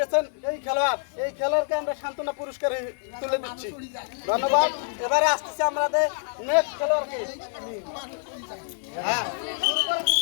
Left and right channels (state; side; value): silent; right; digital silence